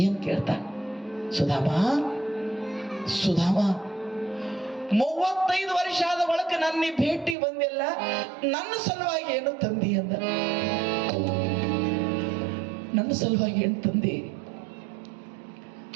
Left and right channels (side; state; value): left; drops out; at 7.4 s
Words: ಏನ್ ಕೇಳ್ತಾನ? ಸುಧಾಮ, ಸುಧಾಮ, 35 ವರ್ಷ ಆದ ಬಳಿಕ ನನ್ನ ಭೇಟಿ ಬಂದಿಲ್ಲ, ನನ್ನ ಸಲುವಾಗಿ ಏನು ತಂದಿ ಅಂದ. ನನ್ನ ಸಲುವಾಗಿ ಏನು ತಂದಿ?